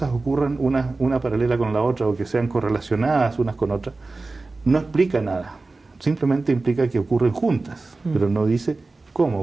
ocurran una paralela con la otra o que sean correlacionadas unas con otras, no explica nada, simplemente implica que ocurren juntas, pero no dice cómo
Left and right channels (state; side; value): quieter; left; 3.5 dB